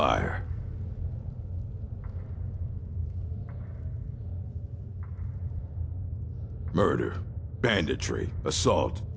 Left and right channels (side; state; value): both; identical; correlation 1.00